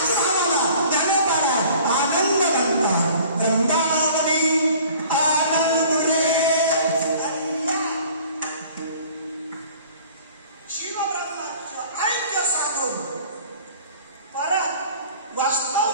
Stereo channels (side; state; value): both; inverted; correlation -0.49